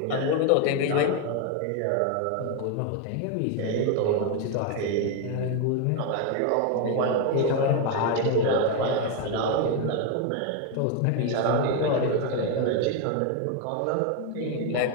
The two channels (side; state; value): both; different; correlation 0.01